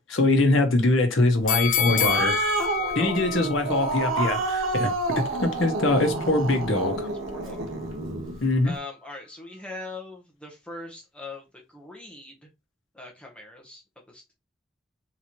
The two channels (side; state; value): both; normal; correlation 0.39